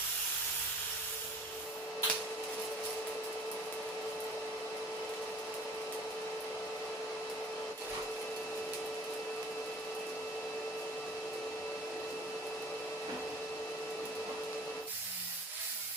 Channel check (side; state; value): both; normal; correlation 0.48